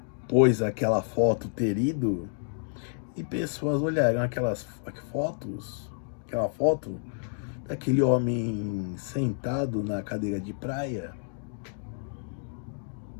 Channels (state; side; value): silent; right; digital silence